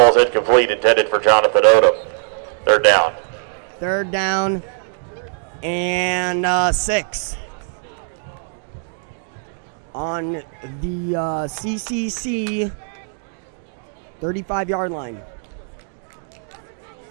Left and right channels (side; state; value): left; silent; 65 dB below the other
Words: incomplete, intended for Jonathan Odom. 3rd down. 3rd down and 6 on the CCC 35-yard line.